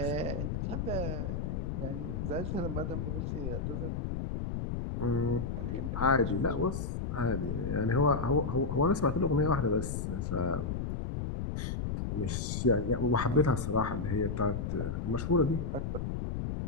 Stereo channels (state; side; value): noise; left; rumble, 2 dB below the sound